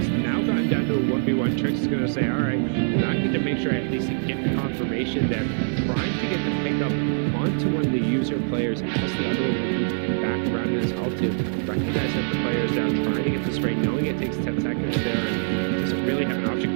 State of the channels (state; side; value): silent; left; digital silence